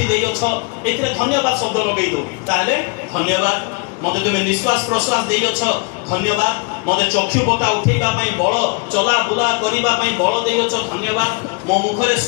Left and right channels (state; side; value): quieter; right; 32.8 dB